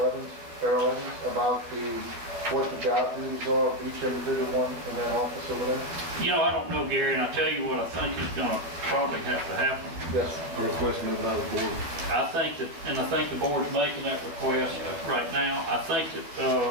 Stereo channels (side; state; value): left; late; 12 ms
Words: Evans, Earl Evans, about what the job duties are of each individual one in that office over there? You know, I don't know, Gary, and I'll tell you what I think is gonna probably have to happen. Yes, sir. A request made by the board. I think that, and I think the board's making that request right now. I think that,